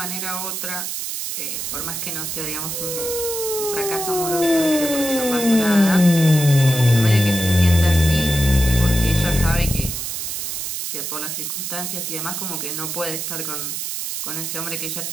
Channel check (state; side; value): noise; right; hiss, 4 dB below the sound